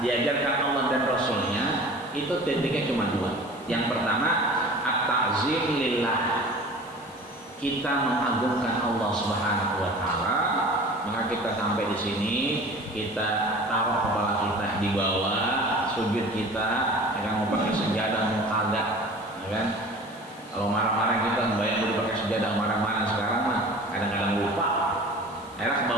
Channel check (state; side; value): noise; left; hiss, 25 dB below the sound